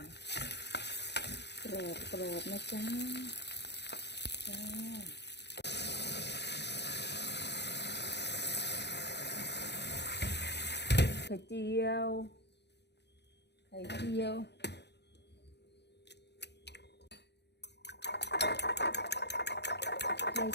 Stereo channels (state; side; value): late; right; 0.50 ms